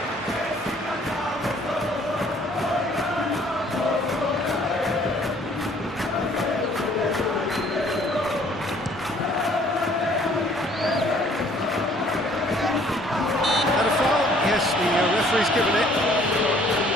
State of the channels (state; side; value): normal; both; correlation 0.59